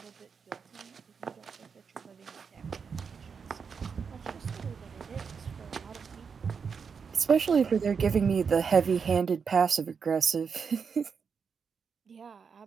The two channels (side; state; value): left; quieter; 6.0 dB